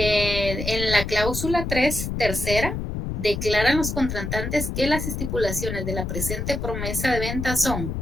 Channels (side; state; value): left; noise; rumble, 4 dB below the sound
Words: la cláusula 3, tercera, declaran los contratantes que las estipulaciones de la presente promesa de venta son